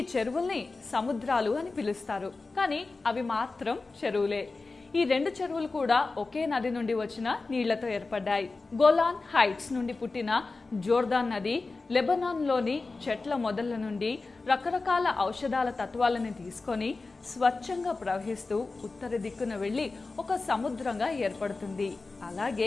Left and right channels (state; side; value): quieter; right; 3.7 dB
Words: చెరువుల్ని సముద్రాలు అని పిలుస్తారు. కానీ అవి మాత్రం చెరువులే. ఈ 2 చెరువులు కూడా ఒకే నది నుండి వచ్చిన నీళ్లతో ఏర్పడ్డాయి. గోలాన్ హైట్స్ నుండి పుట్టిన జోర్దాన్ నది లెబనాన్లోని చెట్ల మొదళ్ల నుండి రకరకాల ఔషధాల తత్వాలను తీసుకొని స్వచ్ఛంగా ప్రవహిస్తూ ఉత్తర దిక్కున వెళ్లి ఒక సముద్రంగా ఏర్పడుతుంది.